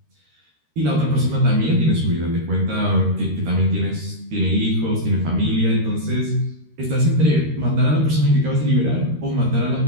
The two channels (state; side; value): late; left; 13 ms